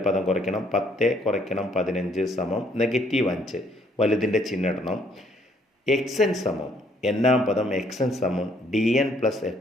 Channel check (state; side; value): normal; both; correlation 0.66